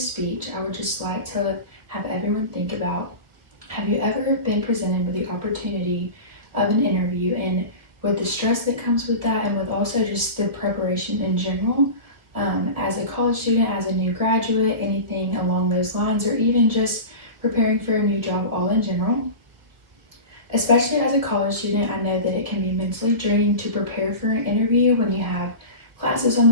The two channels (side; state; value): left; late; 1.5 ms